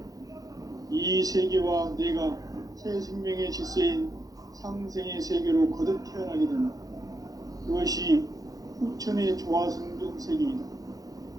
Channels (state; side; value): late; left; 0.18 ms